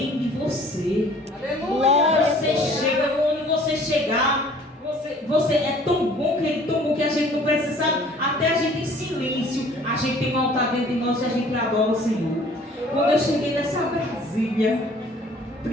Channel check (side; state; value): both; normal; correlation 0.53